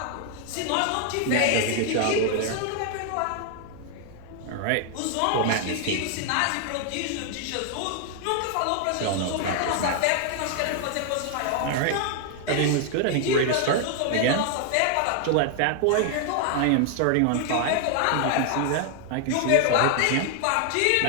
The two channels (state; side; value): different; both; correlation 0.00